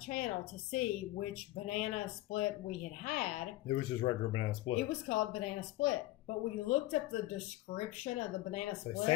to see which banana split we had. It was just regular banana split. It was called banana split. But we looked up the description of the banana split. They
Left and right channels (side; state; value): right; quieter; 17.4 dB